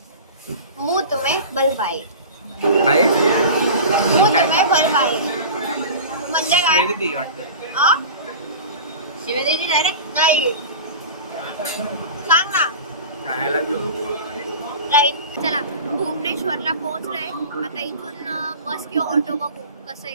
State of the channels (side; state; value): both; inverted; correlation -0.34